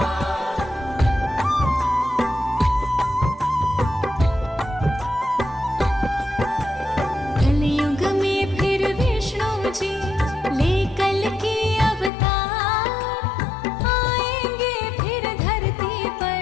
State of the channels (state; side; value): drops out; right; at 12.1 s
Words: कलयुग में फिर विष्णु जी ले कल की अवतार, आएंगे फिर धरती